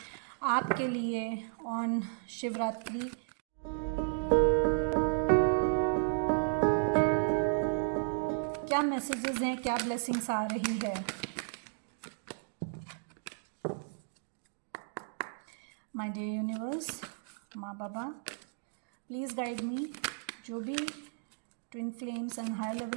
आपके लिए ऑन शिवरात्रि। क्या मैसेजेस हैं, क्या ब्लेसिंग्स आ रही है। माय डियर यूनिवर्स, माँ बाबा, प्लीज़ गाइड मी। जो भी twin flames and higher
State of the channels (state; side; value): silent; left; digital silence